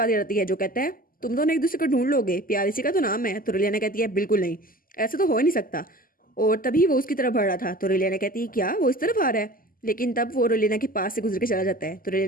याद आती है जो कहता है तुम दोनों एक दूसरे को ढूंढ लोगे, प्यार इसी का तो नाम है। तो रेलियाना कहती है बिल्कुल नहीं, ऐसा तो हो ही नहीं सकता। और तभी वो उसकी तरफ बढ़ रहा था। तो रेलियाना कहती है क्या वो इस तरफ आ रहा है? लेकिन तब वो रेलियाना के पास से गुजर के चला जाता है। तो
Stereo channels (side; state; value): right; late; 0.41 ms